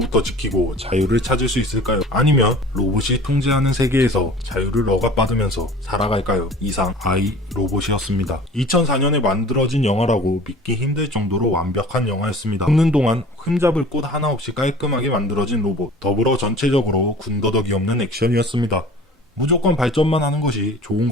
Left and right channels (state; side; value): normal; both; correlation 0.44